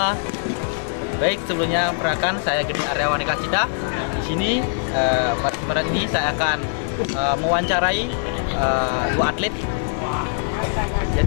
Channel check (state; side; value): silent; right; digital silence